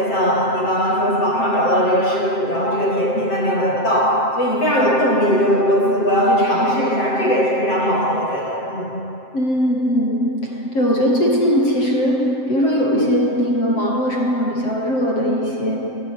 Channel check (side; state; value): right; late; 7.7 ms